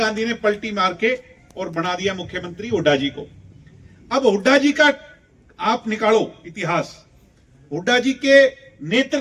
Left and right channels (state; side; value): identical; both; correlation 1.00